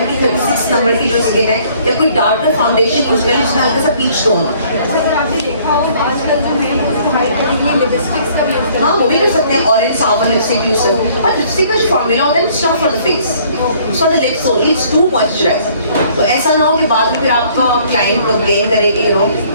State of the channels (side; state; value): both; inverted; correlation -0.59